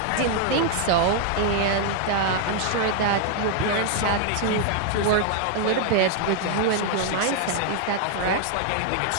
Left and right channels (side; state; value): both; different; correlation 0.00